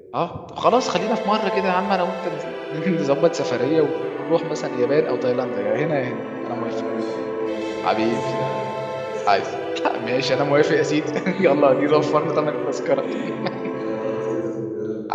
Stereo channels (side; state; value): both; identical; correlation 1.00